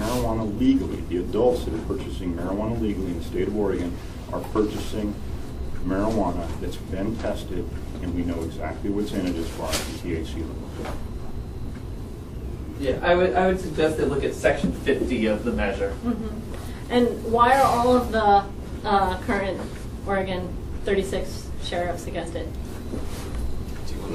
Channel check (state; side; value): identical; both; correlation 1.00